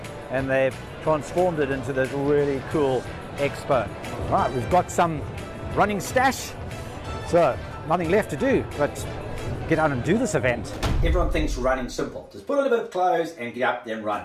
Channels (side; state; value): both; identical; correlation 1.00